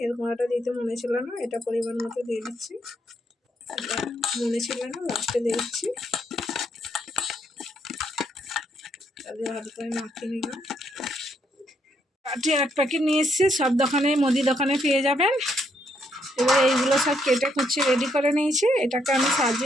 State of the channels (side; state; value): both; normal; correlation 0.74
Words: এর গুঁড়াটা দিতে মনে ছিল না, এটা পরিমাণ মতো দিয়ে দিচ্ছি। এটা মনে ছিল না, লাস্টে দিয়ে দিচ্ছি। তাদের ভালো করে মাখিয়ে নিলাম। কাঠি 1 প্যাকেট নিয়ে এসেছি, সব দোকানে মুদি দোকানে পেয়ে যাবেন। এবার এইগুলো সব কেটে কুচিয়ে রেডি করে নিয়েছি, এটাকে আমি